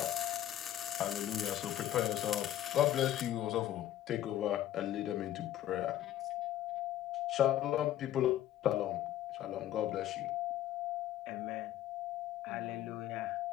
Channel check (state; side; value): quieter; right; 12.5 dB